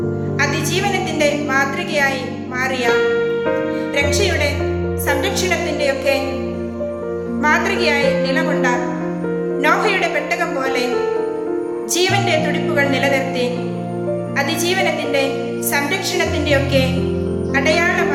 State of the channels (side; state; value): both; identical; correlation 1.00